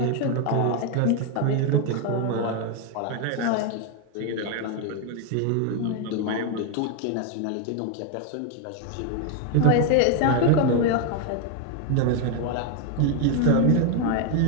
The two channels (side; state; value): both; different; correlation 0.01